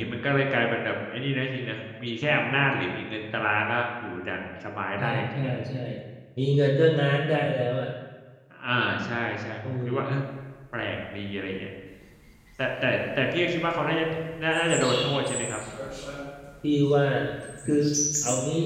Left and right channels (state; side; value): identical; both; correlation 1.00